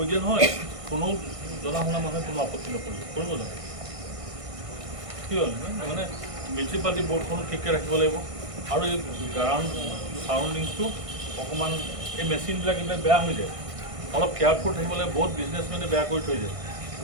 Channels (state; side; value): late; left; 1.5 ms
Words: দিয়া নহয় কোনো জনা শুনা মানুহে কোনো আপত্তি নকৰিব কৰিব লাগে কি হ'ল মানে মিউনিচিপালিটি বৰ্ডখনো ঠিককৈ ৰাখিব লাগিব আৰু এই গ্ৰাউণ্ড চাৰাউণ্ডিংছটো অকণমান এই মেচিনবিলাক এইবিলাক বেয়া হৈ যায় অলপ কেয়াৰফুল থাকিব লাগে বহুত বিজনেছমেনে বেয়া কৰি থৈ যায়